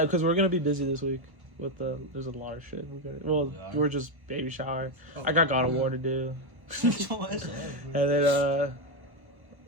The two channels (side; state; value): left; late; 1.1 ms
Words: we're gonna be busy this week with there's a lot of shit. are. We're just baby shower. I got God of War to do, What's up, and bro? then